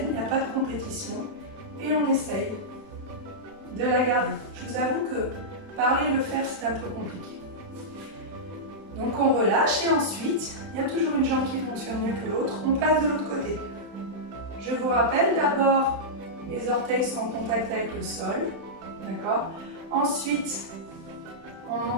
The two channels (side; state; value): left; late; 31 ms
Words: il n'y a pas de compétition et on essaye de la garder. Je vous avoue que parler et le faire, c'est un peu compliqué. Donc on relâche et ensuite, il y a toujours une jambe qui fonctionne mieux que l'autre, on passe de l'autre côté. Je vous rappelle d'abord, les orteils sont en contact avec le sol, d'accord? Ensuite, on